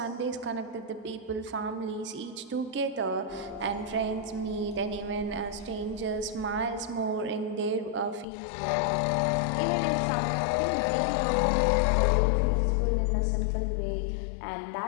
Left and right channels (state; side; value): drops out; right; at 8.2 s